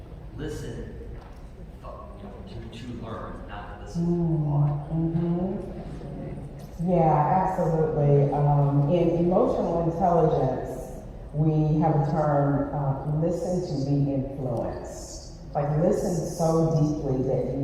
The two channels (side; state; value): both; identical; correlation 1.00